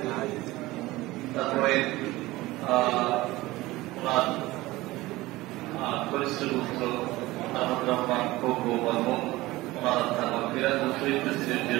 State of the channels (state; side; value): quieter; left; 19.0 dB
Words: তারপরে ওনার কনিষ্ঠ পুত্র আহমদ রহমান খোকো বর্মন ওনার আত্মার মাগফিরাত ও শহীদ প্রেসিডেন্ট